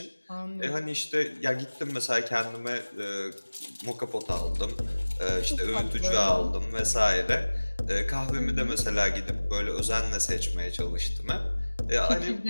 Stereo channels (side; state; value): both; inverted; correlation -1.00